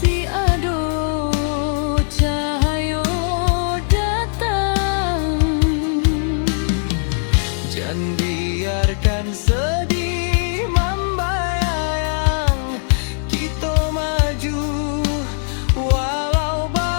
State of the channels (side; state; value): right; silent; digital silence